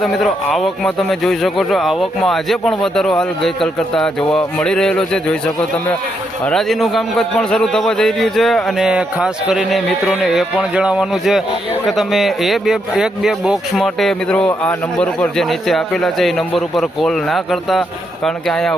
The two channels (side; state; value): both; normal; correlation 0.79